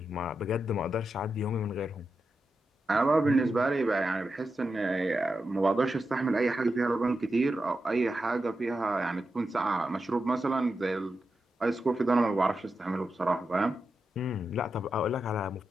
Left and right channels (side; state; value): both; normal; correlation 0.89